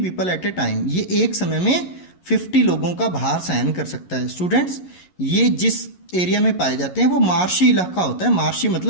at a time. ये एक समय में 50 लोगों का भार सहन कर सकता है. स्टूडेंट्स ये जिस एरिया में पाए जाते हैं वो मार्शी इलाका होता है. मार्शी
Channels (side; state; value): right; late; 11 ms